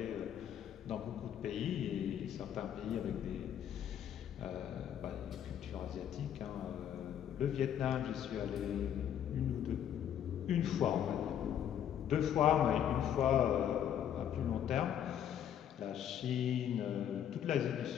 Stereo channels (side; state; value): right; quieter; 9.7 dB